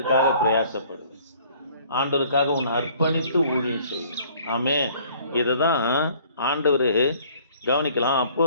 பிரயாசப்படுது. ஆண்டவருக்காக உன்னை அர்ப்பணித்து ஊழியம் செய்யும். ஆமே, இதுதான் ஆண்டவர் கவனிக்கலாம். அப்போ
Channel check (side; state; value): both; inverted; correlation -0.56